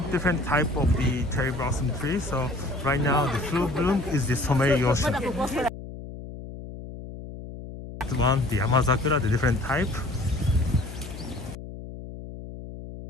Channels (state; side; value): noise; left; hum, 12 dB below the sound